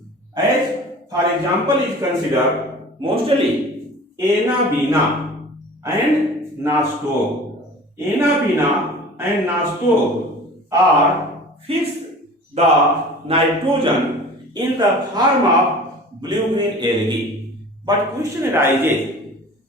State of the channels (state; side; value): normal; both; correlation 0.41